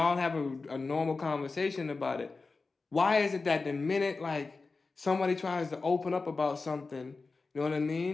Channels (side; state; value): right; quieter; 4.0 dB